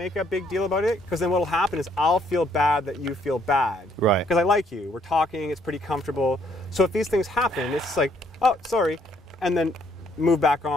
a big deal about it, because then what'll happen is I'll feel bad that you feel bad. Right. Because I like you. We're talking, it's pretty comfortable. So if these things happen, it's like, oh, sorry, and then move back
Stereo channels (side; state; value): both; normal; correlation 0.67